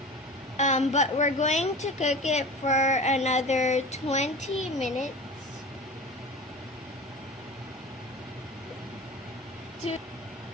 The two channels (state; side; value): normal; both; correlation 0.35